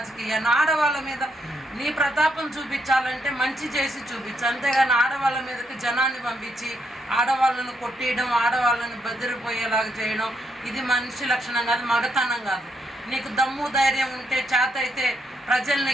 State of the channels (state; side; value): normal; both; correlation 0.77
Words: ఆడవాళ్ళ మీద నీ ప్రతాపం చూపించాలంటే మంచి చేసి చూపించు, అంతేగాని ఆడవాళ్ళ మీదకి జనాన్ని పంపించి ఆడవాళ్ళను కొట్టేయడం, ఆడవాళ్ళని బెదిరిపోయేలాగా చేయడం ఇది మనిషి లక్షణం కాదు, మగతనం కాదు. నీకు దమ్ము ధైర్యం ఉంటే చేత అయితే ప్రజల్ని